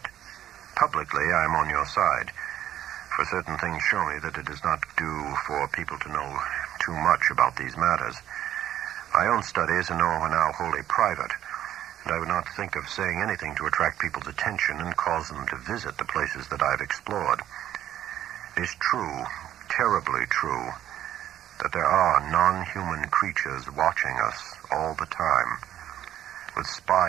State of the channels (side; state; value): left; quieter; 11.7 dB